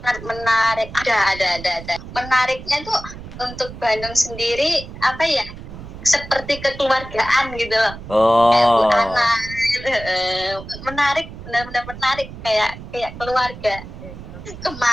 menarik. Ada. Menariknya tuh untuk Bandung sendiri apa ya? Seperti kekeluargaan gitu loh. Kayak Bu Ana gitu. Menarik, benar-benar menarik kayak keluarga.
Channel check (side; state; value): right; noise; rumble, 13 dB below the sound